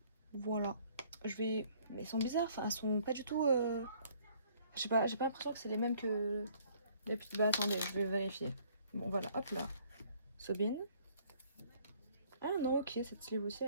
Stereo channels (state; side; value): inverted; both; correlation -0.59